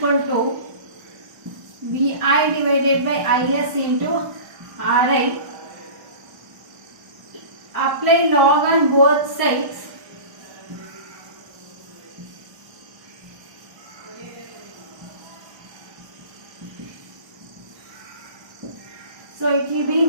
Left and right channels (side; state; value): left; late; 1.2 ms